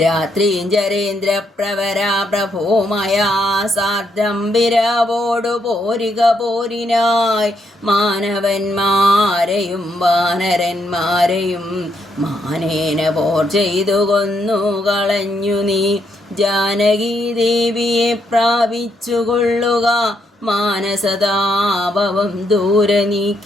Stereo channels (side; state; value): both; normal; correlation 0.77